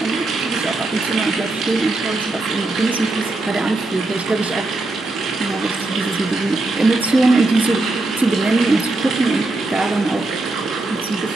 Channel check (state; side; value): quieter; left; 3.0 dB